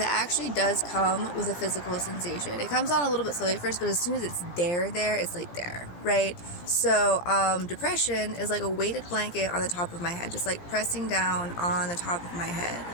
actually does come with a physical sensation. It comes on a little bit slowly at first, but as soon as it's there, it's there, right? So, depression is a weighted blanket on the top of my head, just pressing down on the top of my head.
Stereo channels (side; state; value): right; late; 17 ms